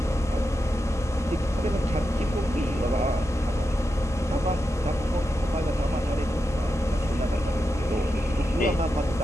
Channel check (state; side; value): normal; both; correlation 0.88